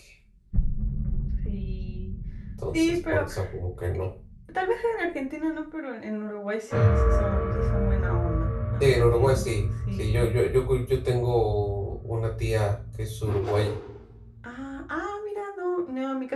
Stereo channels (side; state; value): both; identical; correlation 1.00